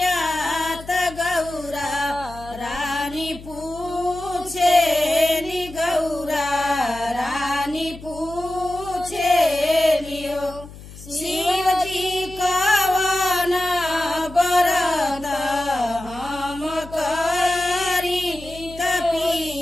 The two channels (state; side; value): noise; left; hum, 16 dB below the sound